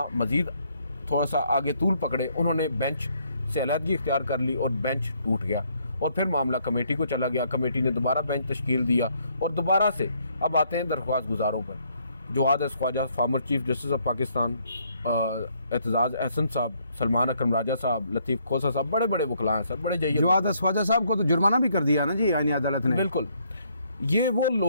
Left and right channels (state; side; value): inverted; both; correlation -0.69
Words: मज़ीद थोड़ा सा आगे तूल पकड़े, उन्होंने बेंच से अलहदगी इख्तियार कर ली और बेंच टूट गया और फिर मामला कमेटी को चला गया। कमेटी ने दोबारा बेंच तश्कील दिया और दोबारा से अब आते हैं दरख्वास्त गुजारों पर। Jawad Khawaja, former chief justice of Pakistan, Aitzaz Ahsan साहब, सलमान अकरम राजा साहब, लतीफ़ खोसा साहब, बड़े बड़े वकला हैं सर, बड़े जय्यद। जवाद ख्वाजा साहब को तो जुर्माना भी कर दिया ना जी आईनी अदालत ने। बिल्कुल, ये वो